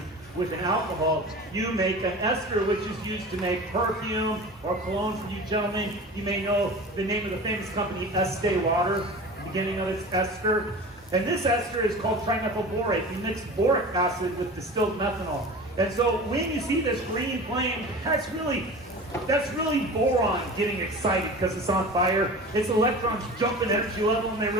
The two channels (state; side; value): normal; both; correlation 0.36